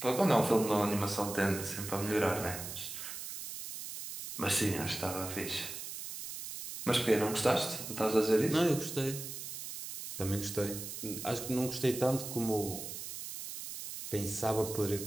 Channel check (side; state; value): right; noise; hiss, 8 dB below the sound